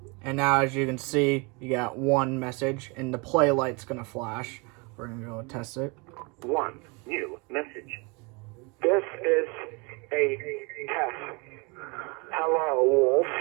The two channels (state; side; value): quieter; left; 29.5 dB